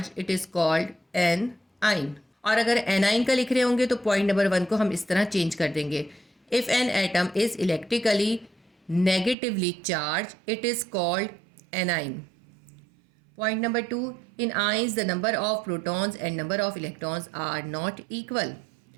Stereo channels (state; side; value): drops out; left; at 9.3 s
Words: it is called an ion. और अगर A9 का लिख रहे होंगे तो point number 1 को हम इस तरह चेंज कर देंगे, if an atom is electrically negatively charged it is called anion. Point number 2, in ions the number of protons and number of electrons are not equal.